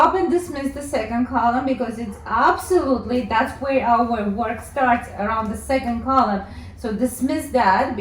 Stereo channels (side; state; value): both; identical; correlation 1.00